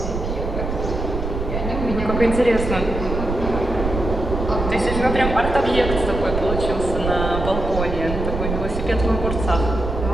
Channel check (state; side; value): noise; right; rumble, 4 dB below the sound